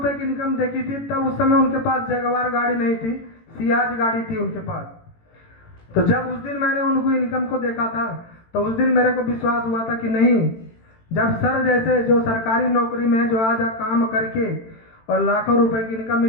की इनकम देखी थी, तब उस समय उनके पास जगवार गाड़ी नहीं थी, सियाज गाड़ी थी उनके पास। तो जब उस दिन मैंने उनको इनकम को देखा था, तो उस दिन मेरे को विश्वास हुआ था कि नहीं, जब सर जैसे जो सरकारी नौकरी में है, जो आज काम करके और लाखों रुपए की इनकम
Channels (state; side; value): late; right; 18 ms